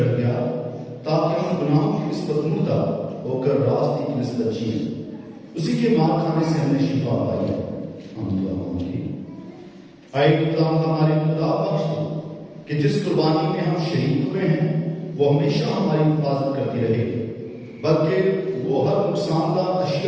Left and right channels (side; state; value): both; identical; correlation 1.00